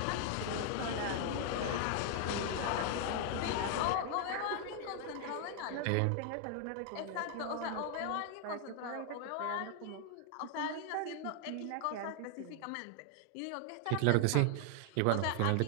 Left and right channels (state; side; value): different; both; correlation 0.00